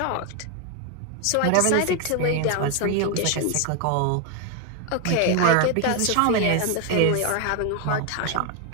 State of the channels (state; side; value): different; both; correlation 0.01